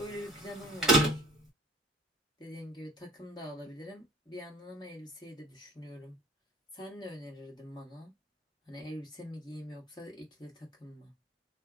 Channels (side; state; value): both; normal; correlation 0.50